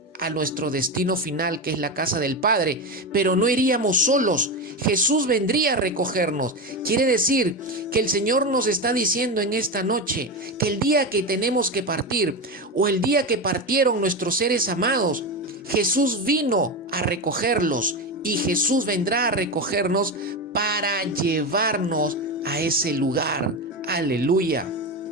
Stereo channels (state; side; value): normal; both; correlation 0.17